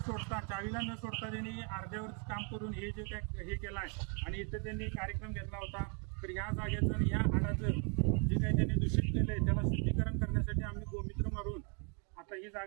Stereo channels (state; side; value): quieter; left; 36.9 dB